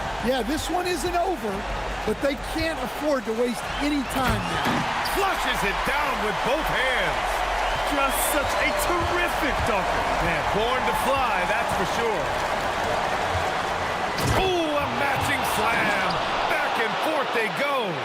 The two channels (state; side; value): identical; both; correlation 1.00